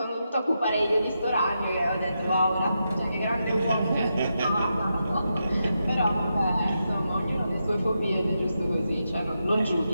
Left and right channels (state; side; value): inverted; both; correlation -0.86